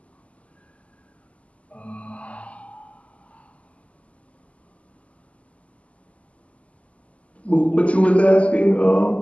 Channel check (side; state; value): right; late; 0.065 ms